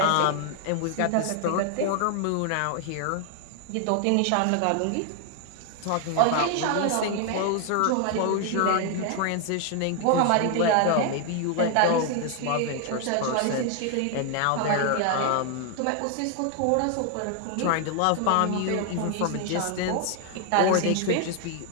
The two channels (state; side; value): different; both; correlation 0.00